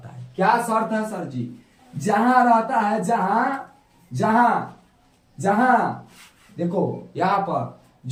है। क्या शर्त है सर जी? जहां रहता है, जहां देखो यहां पर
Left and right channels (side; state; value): both; identical; correlation 1.00